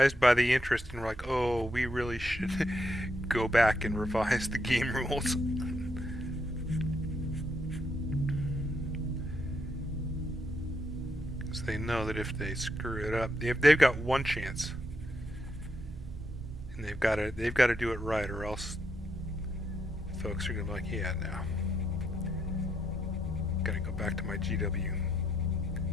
by the interest and we're like, oh, we really should go back and revise the game rules. Because they know that if they screw it up, they've got one chance. And they've got to do it right, or else folks are going to be like, yeah, no. Gotta go back to my GW.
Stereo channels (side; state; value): right; noise; rumble, 17 dB below the sound